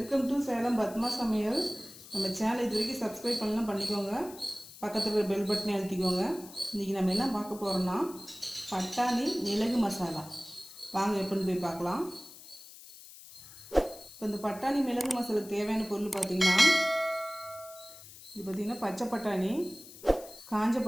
to Salem Padma சமையல். நம்ம channel இது வரைக்கும் சப்ஸ்கிரைப் பண்ணலாம் பண்ணிக்கோங்க. பக்கத்தில் இருக்கிற பெல் பட்டனை அழுத்திக்கோங்க. இன்றைக்கி நம்ம என்ன பார்க்க போகிறோம்னா பட்டாணி மிளகு மசாலா. வாங்க எப்படின்னு போய் பார்க்கலாம். இப்போ இந்த பட்டாணி மிளகு மசாலாவுக்கு தேவையான பொருள் பார்த்திங்கன்னா, இது பார்த்திங்கன்னா பச்சை பட்டாணி, காஞ்ச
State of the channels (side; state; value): left; noise; hiss, 18 dB below the sound